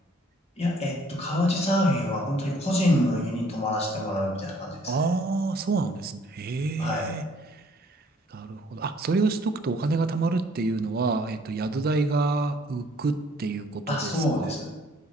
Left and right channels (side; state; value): both; normal; correlation 0.61